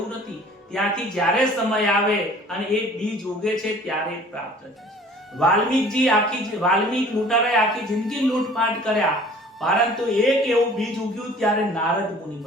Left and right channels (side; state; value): both; normal; correlation 0.49